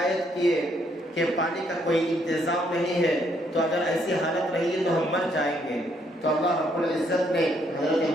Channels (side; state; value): both; normal; correlation 0.71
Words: کیے کہ پانی کا کوئی انتظام نہیں ہے، تو اگر ایسی حالت رہی تو ہم مر جائیں گے۔ تو اللہ رب العزت نے حضرت